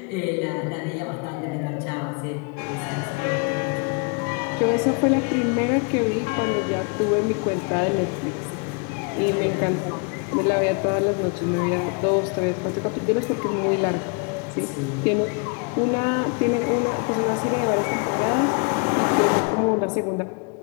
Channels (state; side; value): quieter; right; 34.2 dB